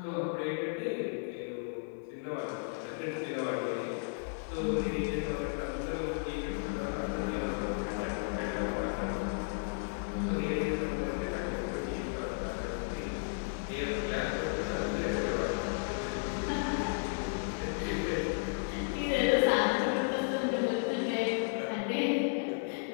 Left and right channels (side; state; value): right; silent; digital silence